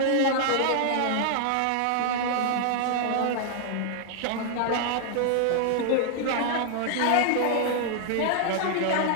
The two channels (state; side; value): different; both; correlation -0.01